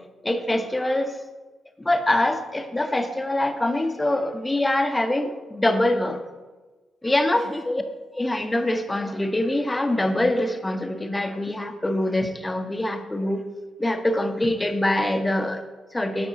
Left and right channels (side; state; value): both; normal; correlation 0.95